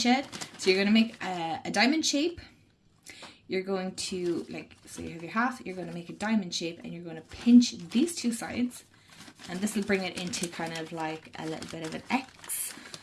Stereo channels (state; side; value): identical; both; correlation 1.00